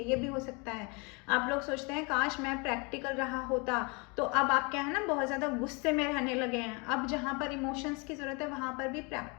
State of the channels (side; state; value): right; quieter; 30.3 dB